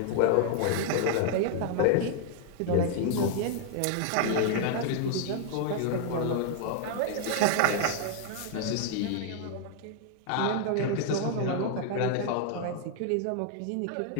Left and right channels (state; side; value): different; both; correlation 0.00